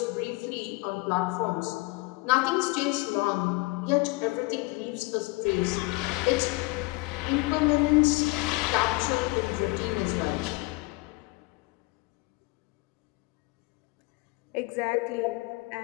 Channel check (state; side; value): quieter; right; 24.3 dB